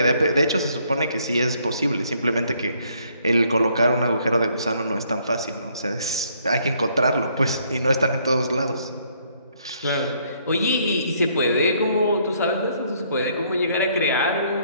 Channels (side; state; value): both; inverted; correlation -0.67